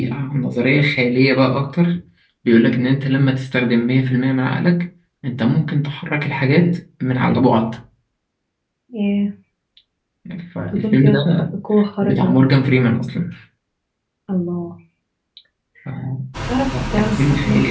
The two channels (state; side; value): identical; both; correlation 1.00